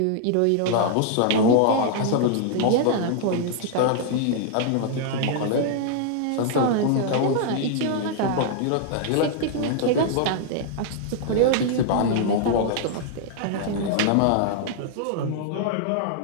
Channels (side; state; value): both; different; correlation -0.01